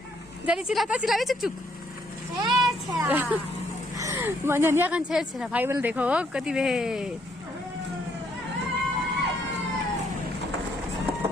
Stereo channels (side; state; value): both; normal; correlation 0.70